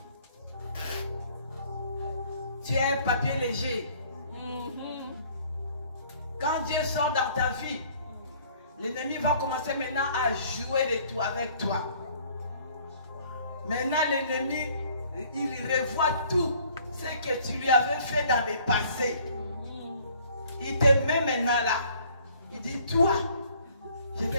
tu es un papier léger. Quand Dieu sort dans ta vie, l'ennemi va commencer maintenant à jouer de tout avec toi. Maintenant, l'ennemi, il revoit tout ce que tu lui avais fait dans le passé. Il te met maintenant là. Il dit, toi, je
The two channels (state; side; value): inverted; both; correlation -0.57